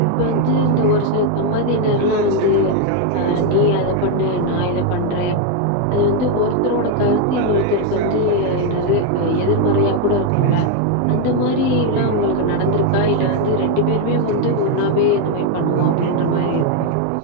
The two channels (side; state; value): both; different; correlation 0.01